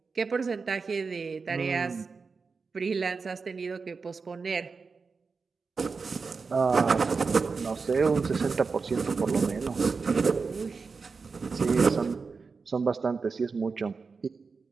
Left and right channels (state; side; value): quieter; left; 4.8 dB